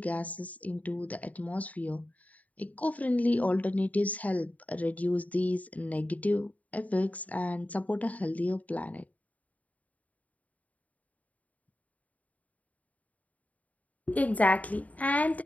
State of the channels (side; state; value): right; late; 0.072 ms